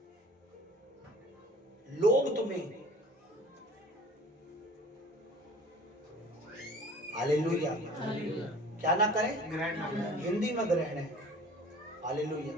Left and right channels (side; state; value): both; normal; correlation 0.46